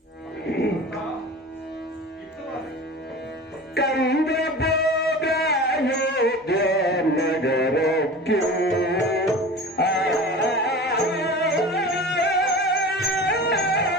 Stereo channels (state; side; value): normal; both; correlation 0.35